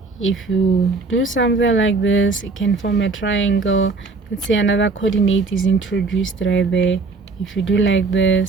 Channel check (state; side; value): quieter; left; 4.0 dB